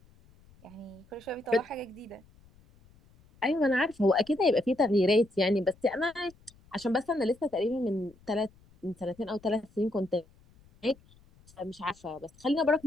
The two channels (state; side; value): noise; left; rumble, 28 dB below the sound